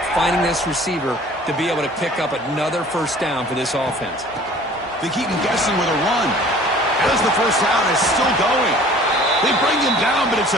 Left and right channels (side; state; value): both; normal; correlation 0.49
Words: finding this receiver to be able to pick up another first down for this offense. They keep him guessing with a run. As the first down is still going. They bring him down, but it's